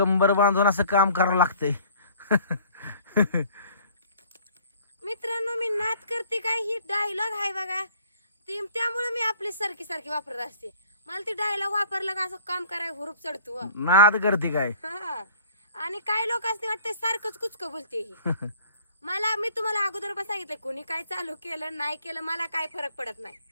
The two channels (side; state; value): both; inverted; correlation -0.52